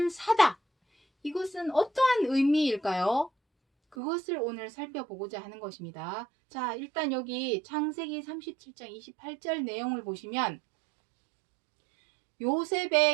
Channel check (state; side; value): drops out; left; at 4.0 s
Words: 사다, 이것은 어떠한 의미일까요? 그것을 오늘 살펴보고자 하는 것입니다. 자, 일단 여기 창세기 37장 28절 내용을 보시면